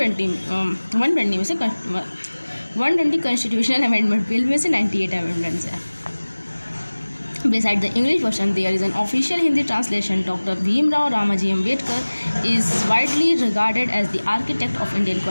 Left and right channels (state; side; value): inverted; both; correlation -1.00